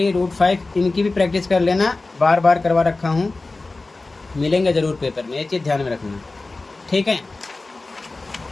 √5 इनकी भी प्रैक्टिस कर लेना, बार बार करवा रखा हूँ, मिलेंगे ज़रूर पेपर में, ये चीज़ ध्यान में रखना, ठीक है।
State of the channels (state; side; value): quieter; right; 3.4 dB